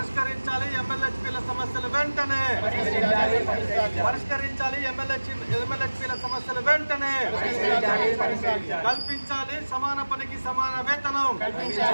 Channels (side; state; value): both; inverted; correlation -1.00